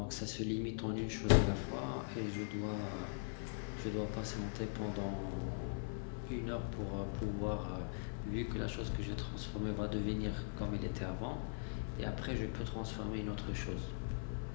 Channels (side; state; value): right; silent; 50 dB below the other